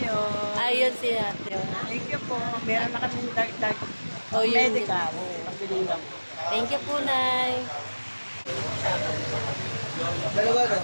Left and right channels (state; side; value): inverted; both; correlation -1.00